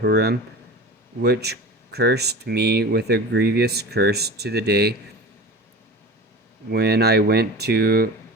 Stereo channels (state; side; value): normal; both; correlation 0.34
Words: which cursed me with a grievous curse to the day when I went to